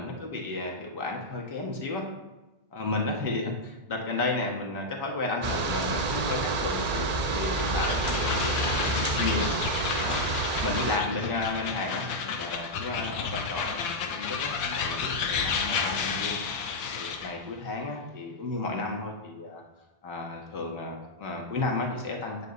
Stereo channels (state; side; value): late; left; 2.3 ms